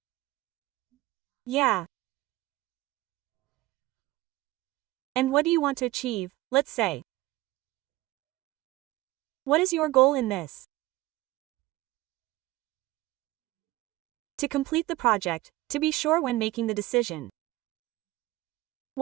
Yeah. And what do you want to achieve, let's say? What is your goal in this? To complete the project, to be sure when making the decision.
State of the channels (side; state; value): left; quieter; 18.3 dB